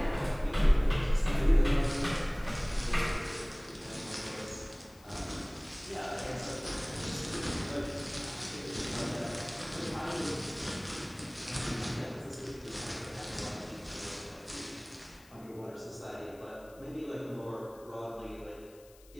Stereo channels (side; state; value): left; noise; hiss, 25 dB below the sound